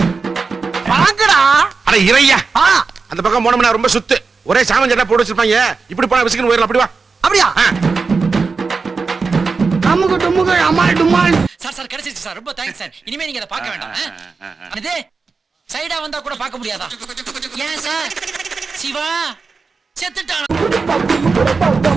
வாங்கடா. அட இறையா, அந்த பக்கம் போனோம்னா ரொம்ப சுத்து, ஒரே சாமன் சட்டை போட்டு வச்சிருப்பாங்க. இப்படி போனா விசிக்கன் போயிடலாம். அப்படி வா. அப்படியா? அமுகு டுமுகு அமால் டுமால். சார் கிடைச்சிருச்சு சார், ரொம்ப தேங்க்ஸ் சார். இனிமே நீங்க அதை பார்க்க வேண்டாம். இது சைடா வந்தா கூட பார்க்க முடியாதா? ஏன் சார்? சிவா செத்துட்டான்.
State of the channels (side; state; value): left; quieter; 4.6 dB